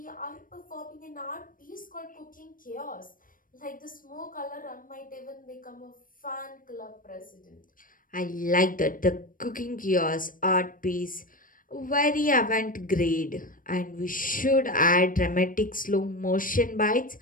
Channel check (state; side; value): late; right; 0.40 ms